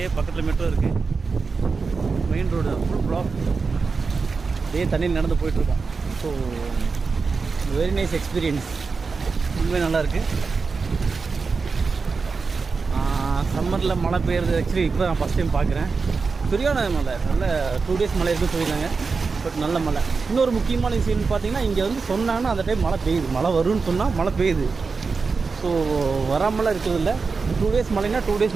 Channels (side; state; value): left; quieter; 4.7 dB